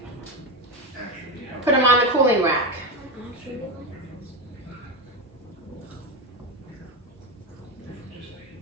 put them on the cooling rack.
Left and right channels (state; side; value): normal; both; correlation 0.13